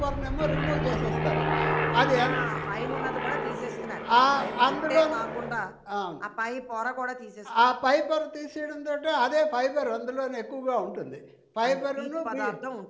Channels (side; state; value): both; identical; correlation 1.00